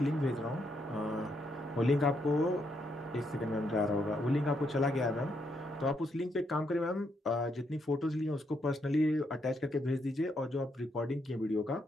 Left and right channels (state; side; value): normal; both; correlation 0.77